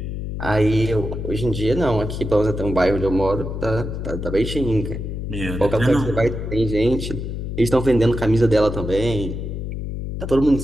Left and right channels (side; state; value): left; noise; hum, 5 dB below the sound